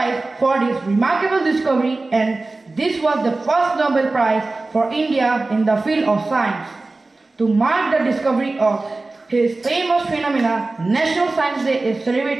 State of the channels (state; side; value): quieter; left; 3.3 dB